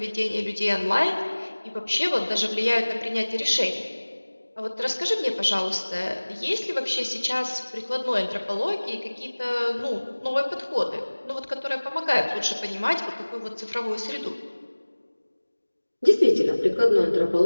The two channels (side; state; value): both; inverted; correlation -1.00